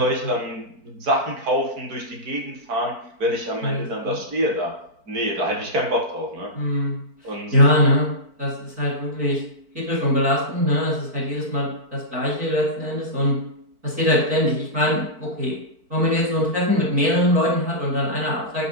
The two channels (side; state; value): left; late; 4.5 ms